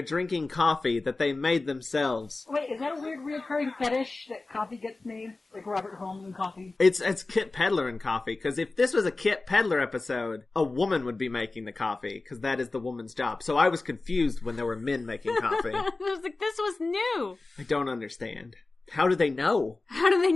drinking coffee that they made themselves. Wait, is that a weird reoccurring fetish that coffee gets made? Like Robert Holmes and coffee? It's Kit Pedler and coffee, because if this was a Kit Pedler episode, a woman would be making the coffee, because that is the woman's job. So I was confused when there were men making coffee. I was like, this was new. I don't understand. How do they know? How do they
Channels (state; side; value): quieter; right; 3.4 dB